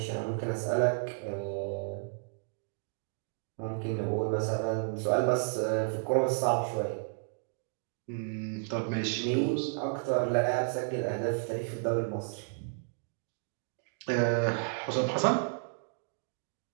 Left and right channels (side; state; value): left; silent; digital silence